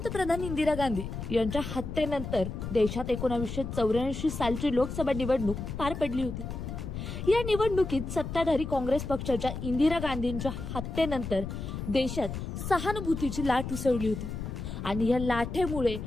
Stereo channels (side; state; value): left; noise; rumble, 6 dB below the sound